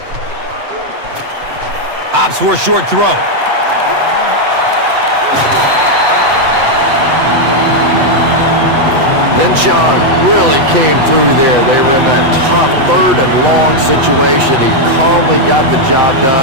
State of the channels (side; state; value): left; late; 7.5 ms